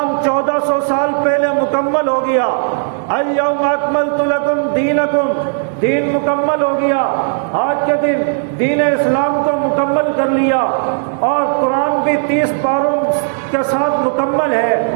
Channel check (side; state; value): left; silent; digital silence